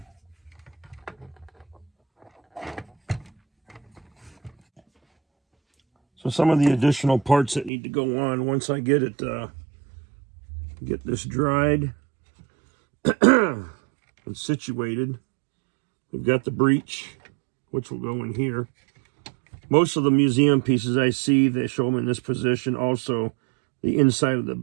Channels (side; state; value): left; drops out; at 7.7 s